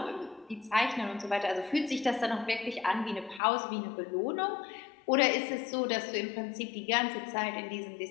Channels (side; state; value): right; drops out; at 3.4 s